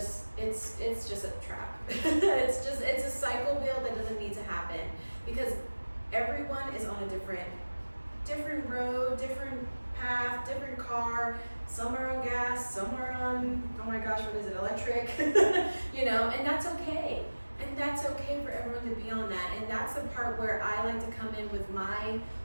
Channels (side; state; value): both; inverted; correlation -1.00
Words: a trap. it's a cycle wheel that doesn't need to happen, because everyone is on a different road, different path, different car. Some are on gas, some are on, oh my gosh, what is it, electric? You know, and that's okay. And that's okay for everyone to be on that. And that's the part where I like to come in with